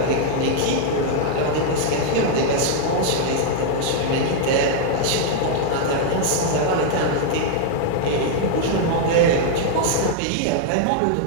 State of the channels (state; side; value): different; both; correlation 0.00